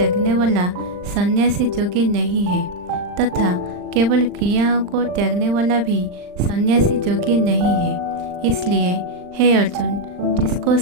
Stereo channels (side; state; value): left; late; 39 ms